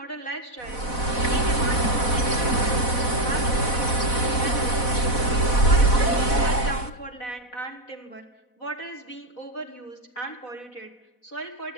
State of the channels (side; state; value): right; late; 4.1 ms